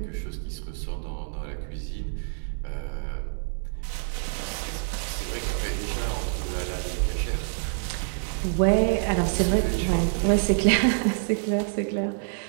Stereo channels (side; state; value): left; silent; digital silence